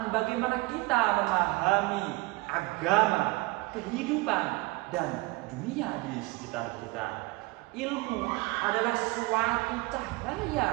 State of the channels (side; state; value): left; quieter; 23.8 dB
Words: bagaimana kita memahami agama, kehidupan, dan dunia di sekitar kita. Ilmu adalah suatu